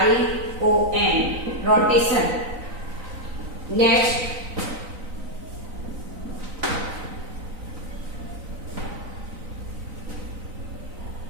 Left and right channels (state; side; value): late; left; 3.9 ms